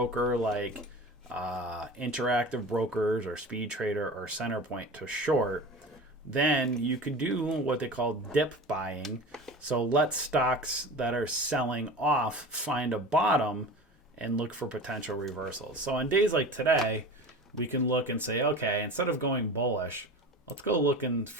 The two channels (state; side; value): normal; both; correlation 0.34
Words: like Interactive Brokers or Speed Trader or Centerpoint to short, then you could do what they call dip buying. So let stocks that are selling off find a bottom and look for potential reversals. So on days like today, we can look and say, okay, instead of going bullish, let's go look and